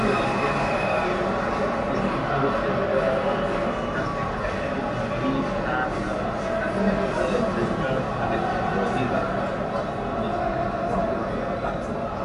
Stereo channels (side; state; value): both; identical; correlation 1.00